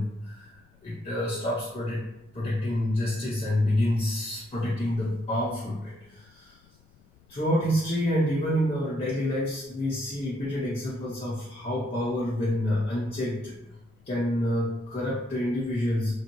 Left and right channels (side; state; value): left; noise; rumble, 29 dB below the sound